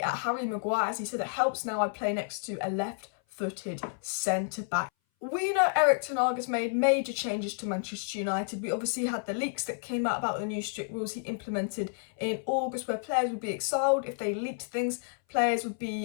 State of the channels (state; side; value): silent; right; 57 dB below the other